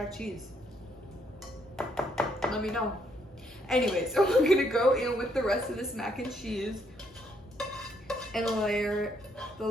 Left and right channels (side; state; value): both; normal; correlation 0.72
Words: cheese. Let me know. Anyways, so we're gonna go in with the rest of this mac and cheese and layer the